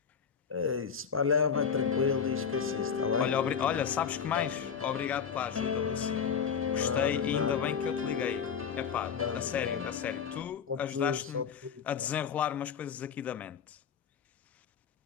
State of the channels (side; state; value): right; quieter; 7.0 dB